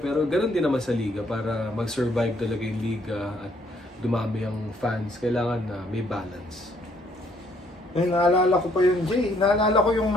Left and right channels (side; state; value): both; normal; correlation 0.67